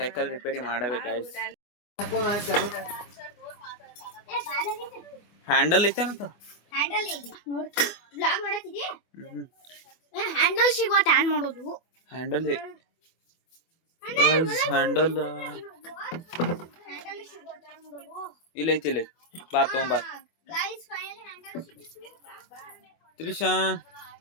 ಸೈಕಲ್ ರಿಪೇರಿ ಮಾಡಬೇಕು ಗೈಸ್. ಹ್ಯಾಂಡಲ್ ಐತೇನಂತ ಹ್ಯಾಂಡಲ್ ಸಿಗುವ ಆನ್ ಮಾಡೋದು. ಹ್ಯಾಂಡಲ್ ಹ್ಯಾಂಡಲ್ ಇಲ್ಲ ಐತಿ ಇಲ್ಲ ಬಾ ತಗೊಂಬಾ ತ್ರಿಷಾ.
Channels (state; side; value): late; right; 24 ms